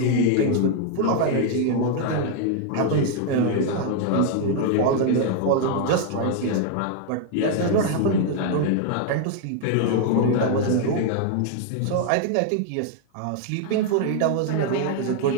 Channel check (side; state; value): both; different; correlation 0.00